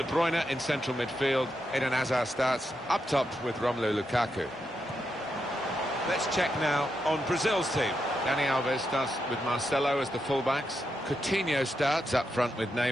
Bruyne in central midfield. Eden Hazard starts up top with Romelu Lukaku. Let's check now on Brazil's team. Dani Alves starts with Marcelo as the fullbacks. Coutinho starts up front with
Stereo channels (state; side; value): normal; both; correlation 0.84